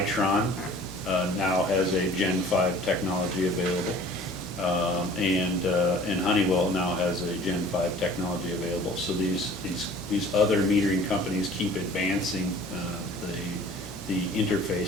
now has a Gen 5 technology available. And Honeywell now has a Gen 5 technology available. So these other metering companies keep advancing the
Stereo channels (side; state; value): both; normal; correlation 0.48